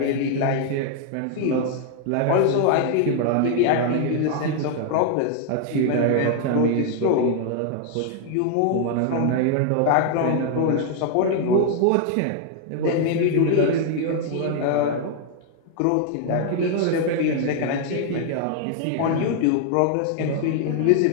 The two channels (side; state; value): both; different; correlation 0.00